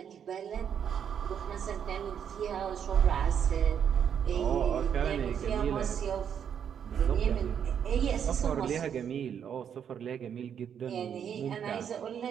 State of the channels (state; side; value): quieter; left; 8.3 dB